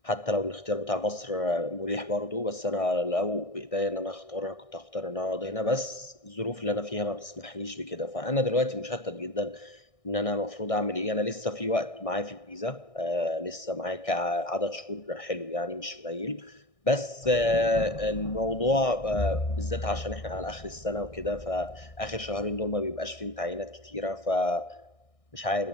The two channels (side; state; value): right; late; 1.6 ms